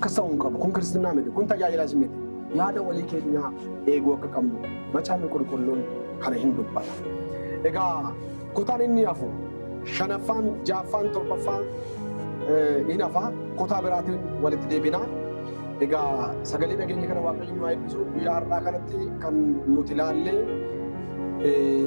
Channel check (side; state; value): both; inverted; correlation -1.00